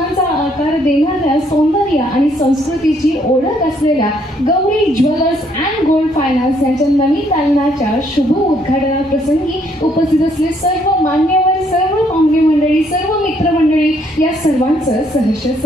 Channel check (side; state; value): both; normal; correlation 0.68